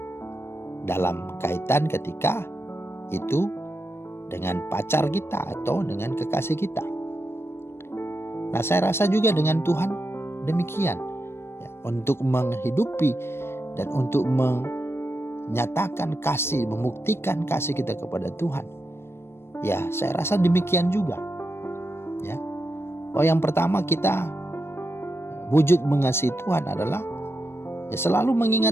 dalam kaitan ketika itu dengan pacar kita atau dengan kekasih kita. Nah, saya rasa juga dengan Tuhan demikian. Ya, untuk menghidupi dan untuk menyatakan kasih, membuktikan kasih kita kepada Tuhan. Ya, saya rasa demikian juga. Ya. Oh, yang pertama kita wujud mengasihi Tuhan adalah ya selalu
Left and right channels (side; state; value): right; late; 0.12 ms